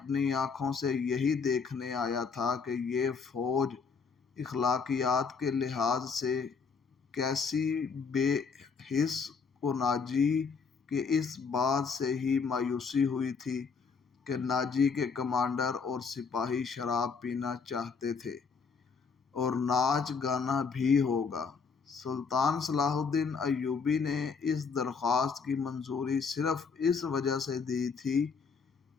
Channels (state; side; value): quieter; right; 5.4 dB